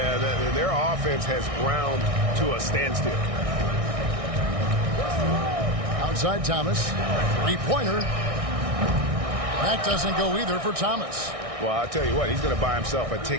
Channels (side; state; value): left; late; 1.6 ms